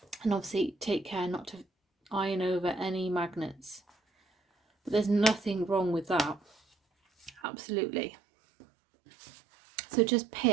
And obviously take care not to iron over any magnets. But there's nothing wrong with that. Absolutely. So just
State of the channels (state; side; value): drops out; left; at 7.4 s